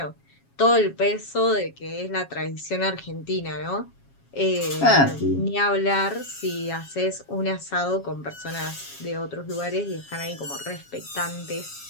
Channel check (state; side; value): late; right; 7.3 ms